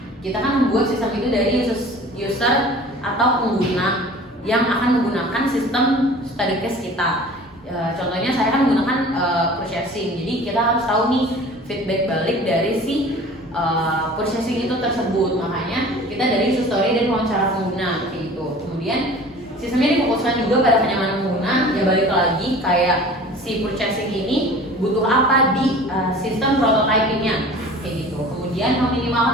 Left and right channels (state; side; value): normal; both; correlation 0.43